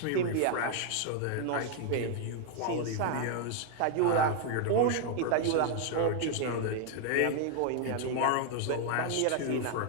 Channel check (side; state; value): both; different; correlation 0.00